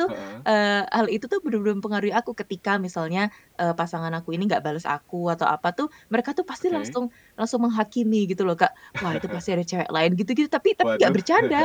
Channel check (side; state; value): both; identical; correlation 1.00